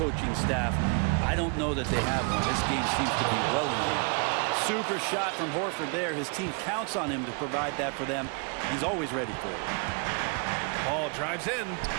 staff. I don't know that they have one. This game seems to be well in hand. Super shot from Horford there. His team counts on him to provide that for them. He's always ready for it. Paul drives in.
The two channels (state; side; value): quieter; left; 35.9 dB